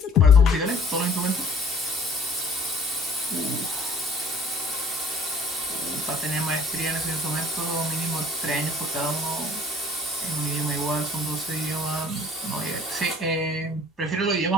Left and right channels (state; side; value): normal; both; correlation 0.53